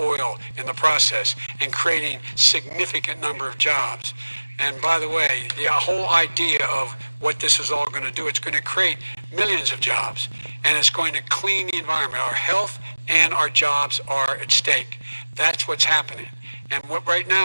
in the process and creating significant number of jobs. And by the way, the whole idea of what this is all going to do, it's going to create millions of jobs, and it's going to clean the environment. Our health and our jobs are at stake. That's what's happening. And what right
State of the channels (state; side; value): inverted; both; correlation -1.00